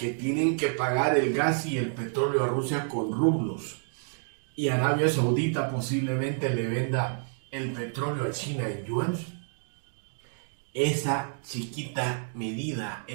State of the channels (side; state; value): left; silent; 59 dB below the other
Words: tienen que pagar el gas y el petróleo a Rusia con rublos, y Arabia Saudita posiblemente le venda el petróleo a China en yuan, esa chiquita medida,